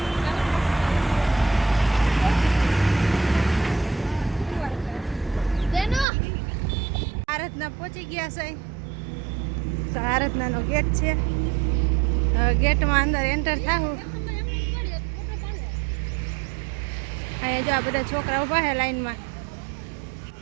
આરાધના પહોંચી ગયા છે, તો આરાધનાનો ગેટ છે। ગેટમાં અંદર એન્ટર થાવું। અહીંયા જો આ બધા છોકરા ઊભા છે લાઈનમાં।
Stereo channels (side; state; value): left; drops out; at 6.1 s